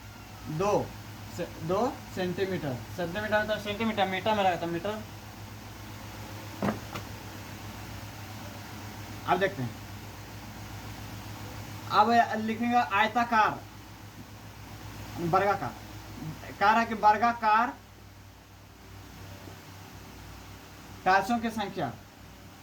2 सेंटीमीटर। सेंटीमीटर तो सेंटीमीटर, मीटर में रहता मीटर। अब देखते हैं, अब लिखेंगे आयताकार वर्गाकार, कह रहा है कि वर्गाकार टाइल्सों की संख्या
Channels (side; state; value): both; identical; correlation 1.00